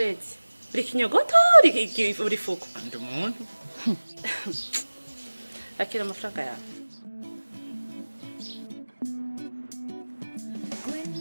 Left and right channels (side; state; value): both; inverted; correlation -1.00